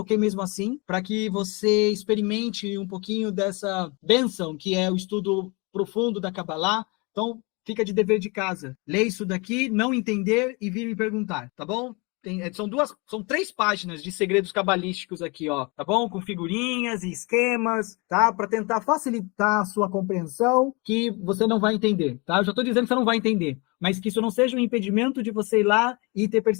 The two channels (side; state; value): right; quieter; 28.8 dB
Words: mesmo assim para que você experimente um pouquinho dessa bênção que é o estudo profundo da Kabbalah. Então, fica de dever de casa. Lê isso daqui, não entender e vir me perguntar, tá bom? São 3 páginas de segredos cabalísticos aqui, tá bom? Com figurinhas e esquemas, tá? Para tentar facilitar a sua compreensão, que você não vai entender, tá? Eu já estou dizendo que você não vai entender, mas que isso não seja um impedimento de você ir lá e ter